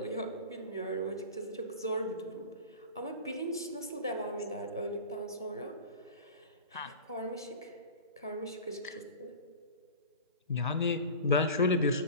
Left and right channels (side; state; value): both; inverted; correlation -0.34